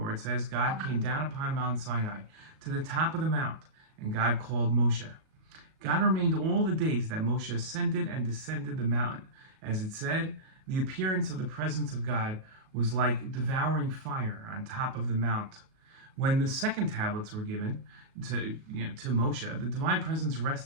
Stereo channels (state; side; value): late; left; 37 ms